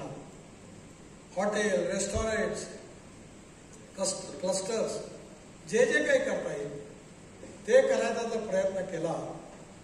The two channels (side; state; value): both; identical; correlation 1.00